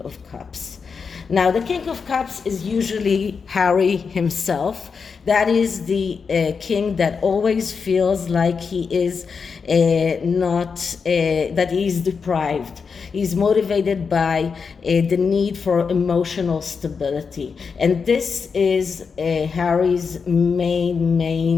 Cups. Now, the King of Cups is usually Harry himself. That is the king that always feels like he is that he is deprived. He's motivated by the need for emotional stability. And this is Harry's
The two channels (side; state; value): right; quieter; 5.5 dB